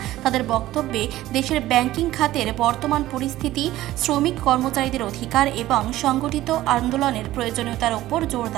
তাদের বক্তব্যে দেশের ব্যাংকিং খাতের বর্তমান পরিস্থিতি, শ্রমিক কর্মচারীদের অধিকার এবং সংগঠিত আন্দোলনের প্রয়োজনীয়তার উপর জোর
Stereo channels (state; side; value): quieter; left; 15.4 dB